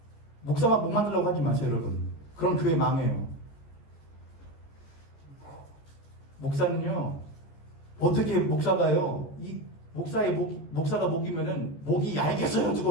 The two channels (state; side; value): late; right; 14 ms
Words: 목사만 목 만들려고 하지 마세요 여러분. 그럼 교회 망해요. 목사는요 어떻게 목사가요 이 목사가 목이면은 목이 얇겠어요